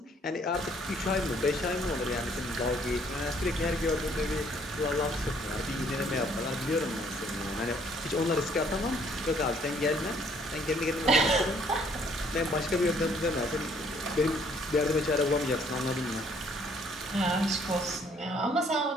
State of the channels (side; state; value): both; normal; correlation 0.63